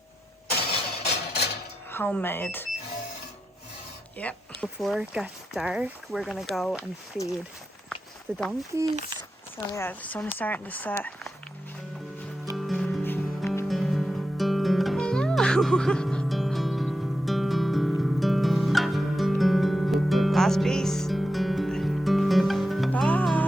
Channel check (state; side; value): normal; both; correlation 0.89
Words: Homemade. Yep. Before it gets dark, we're gonna go and feed the donkeys. So yeah, the sun is starting to set. Last piece.